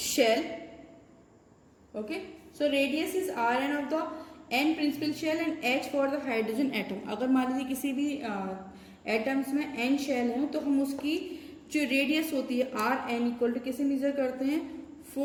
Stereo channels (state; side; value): identical; both; correlation 1.00